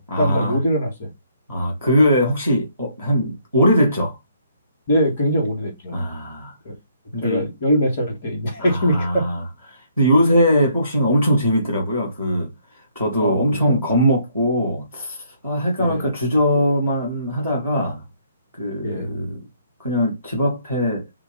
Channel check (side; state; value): both; inverted; correlation -0.68